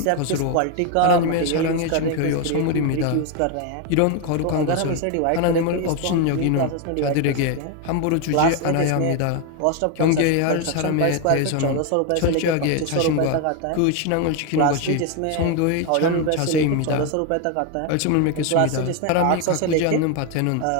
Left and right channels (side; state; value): both; different; correlation 0.01